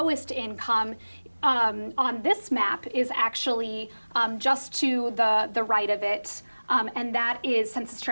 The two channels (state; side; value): inverted; both; correlation -1.00